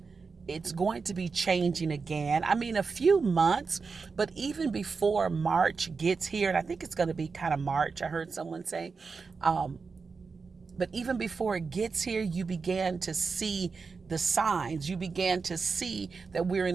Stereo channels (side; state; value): left; quieter; 4.8 dB